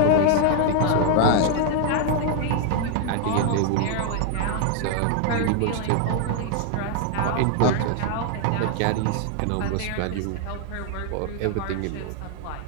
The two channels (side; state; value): both; different; correlation 0.00